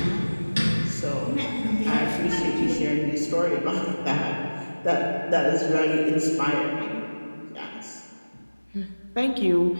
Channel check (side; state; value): both; inverted; correlation -1.00